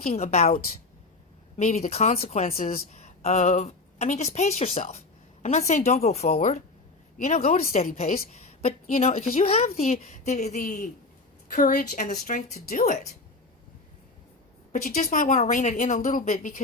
about maybe the consequences of, I mean, just pace yourself. I'm not saying don't go forward, you know, go at a steady pace, but, you know, because you have the courage and the strength to do it. But you just might want to rein it in a little bit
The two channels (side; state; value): right; quieter; 3.5 dB